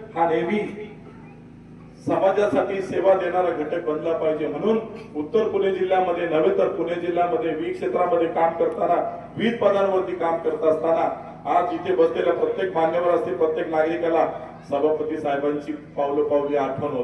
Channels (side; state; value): both; identical; correlation 1.00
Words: हा नेहमी समाजासाठी सेवा देणारा घटक बनला पाहिजे. म्हणून उत्तर पुणे जिल्ह्यामध्ये नव्हे तर पुणे जिल्ह्यामध्ये विविध क्षेत्रामध्ये काम करताना, विविध पदांवरती काम करत असताना आज इथे बसलेल्या प्रत्येक मान्यवर असतील, प्रत्येक नागरिकाला सभापती साहेबांची पावली आठवण